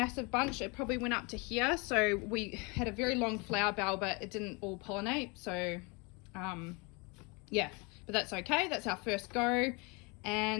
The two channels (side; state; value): right; quieter; 29.4 dB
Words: bunch. It probably went up to here. So we had a very long flower bell, but it didn't all pollinate. So yeah, but that's okay. That's our first go.